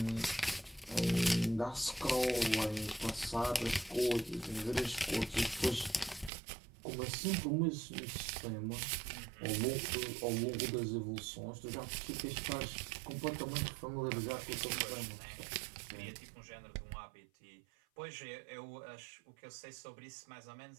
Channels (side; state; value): left; drops out; at 6.3 s